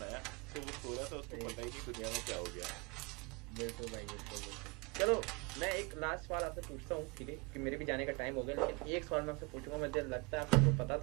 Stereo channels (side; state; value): left; quieter; 28.5 dB